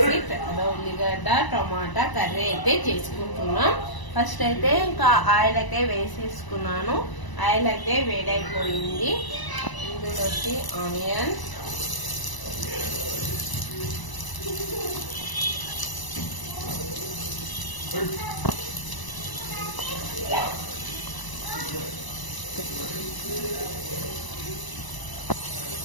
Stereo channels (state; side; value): late; right; 1.0 ms